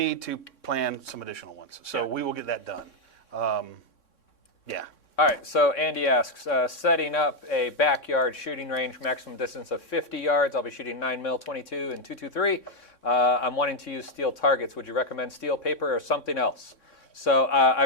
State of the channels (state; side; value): late; right; 3.6 ms